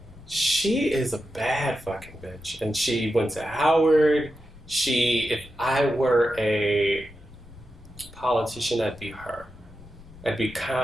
She is a bad fucking bitch. And she went to Howard. If I were a politician, I'd be her. I'd be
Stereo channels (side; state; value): left; noise; rumble, 22 dB below the sound